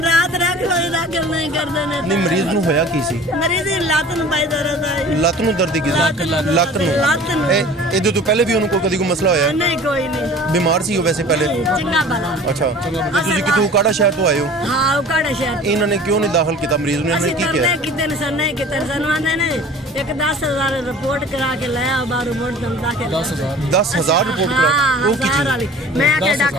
ਰਾਤ ਰੱਖ ਲੋਈ ਦਾਖਲ ਨਹੀਂ ਕਰਦੇ ਨੇ ਨਹੀਂ ਮਰੀਜ਼ ਨੂੰ ਹੋਇਆ ਕੀ ਸੀ ਮਰੀਜ਼ ਦੀ ਲੱਤ ਨੂੰ ਪਾਈ ਦਰਦ ਆਈ ਲੱਤ ਨੂੰ ਦਰਦ ਕੀ ਸੀ ਲੱਤ ਨੂੰ ਇਹਦੇ ਤੋਂ ਪਹਿਲੇ ਵੀ ਉਹਨੂੰ ਕਦੀ ਕੋਈ ਮਸਲਾ ਹੋਇਆ ਨਹੀਂ ਕੋਈ ਨਹੀਂ ਬਿਮਾਰ ਸੀ ਉਹ ਵੈਸੇ ਪਹਿਲੇ ਚੰਗਾ ਭਲਾ ਅੱਛਾ ਤੁਸੀਂ ਕਿਤੋਂ ਕਾੜਾ ਸ਼ਹਿਰ ਤੋਂ ਆਏ ਹੋ ਹਾਂ ਉਹ ਕਾੜਾ ਸ਼ਹਿਰ ਇਹਨਾਂ ਨੇ ਕਿਉਂ ਨਹੀਂ ਦਾਖਲ ਕੀਤਾ ਮਰੀਜ਼ ਨੂੰ ਇਹਨਾਂ ਨੇ ਅਸੀਂ ਕੀ ਕਿਹਾ ਤਰਲੇ ਕਿਤੇ ਨੇ ਸਰ ਨਹੀਂ ਕਿਤੇ ਸਾਨੂੰ ਆਂਦੇ ਨੇ ਇੱਕ 10,000 ਰਿਪੋਰਟ ਕਰਾ ਕੇ ਲੈ ਆ ਬਾਹਰੋਂ ਮੋੜ ਦਮ ਦਾਖਲ 10,000 ਰਿਪੋਰਟ ਕਰਾ ਉਹ ਕੀ ਚੀਜ਼ ਮੈਂ ਕਿ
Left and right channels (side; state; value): both; normal; correlation 0.44